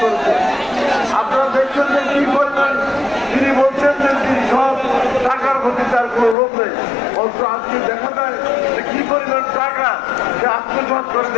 করেছে। আপনারা দেখছেন যে কি করবেন, তিনি বলছেন যে তিনি সব টাকার প্রতি তার কোনো লোভ নেই, অথচ আজকে দেখা যায় যে কি পরিমাণ টাকা সে আত্মসাৎ করে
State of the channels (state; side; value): drops out; right; at 6.4 s